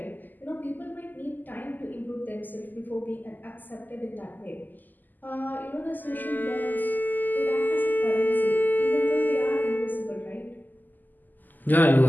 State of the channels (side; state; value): right; late; 0.086 ms